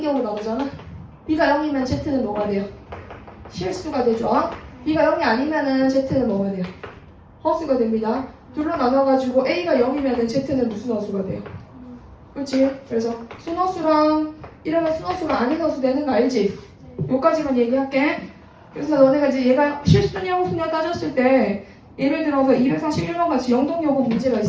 경우 나오잖아. b가 0이면 z는 뭐가 돼요? 실수가 되죠. b가 0이 아니면은 z는 뭐가 돼요? 허수가 됩니다. 둘로 나눠가지고 a가 0이면은 z는 무슨 허수가 돼요? 그렇지? 그래서 순허수랑 이러면 순허수가 아닌 허수 되는 거 알지? 요까지만 얘기할게. 그래서 너네가 이제 얘가 실수냐 허수냐 따졌을 때 예를 들어서 241번 같이 영동여고 문제가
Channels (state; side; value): identical; both; correlation 1.00